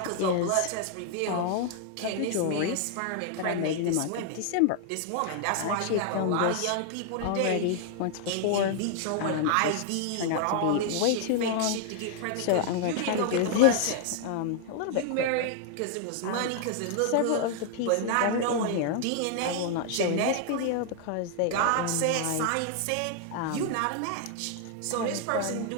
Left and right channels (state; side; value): different; both; correlation 0.00